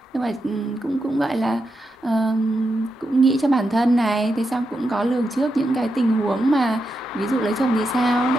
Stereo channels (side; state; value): both; normal; correlation 0.86